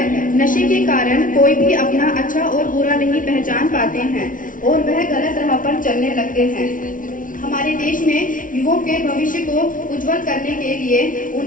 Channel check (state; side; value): late; right; 0.38 ms